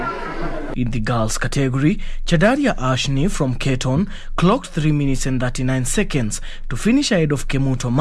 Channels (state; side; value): identical; both; correlation 1.00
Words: In the girls category, Chadaria Ashni from Keton clocked 3 minutes and 39 seconds to finish ahead of Kemuto